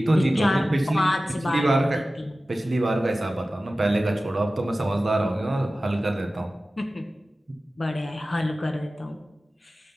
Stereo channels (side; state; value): both; normal; correlation 0.96